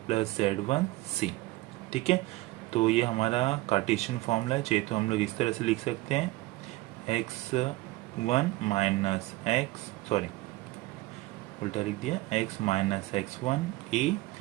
plus Z one C. ठीक है, तो ये हमारा कार्टेशियन फॉर्मूला है। चाहिए तो हम लोग इस तरह से लिख सकते हैं x one minus x, sorry उल्टा लिख दिया, x minus x one A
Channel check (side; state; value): left; quieter; 19.2 dB